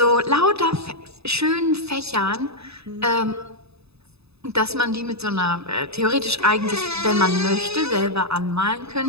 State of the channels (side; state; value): left; late; 0.79 ms